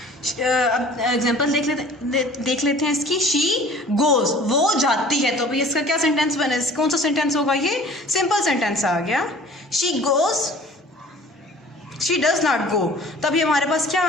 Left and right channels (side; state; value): both; normal; correlation 0.48